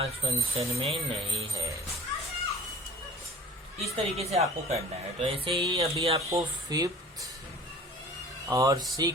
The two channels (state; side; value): normal; both; correlation 0.46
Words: function में नहीं है. इस तरीके से आपको करना है. तो ऐसे ही अभी आपको फिफ्थ और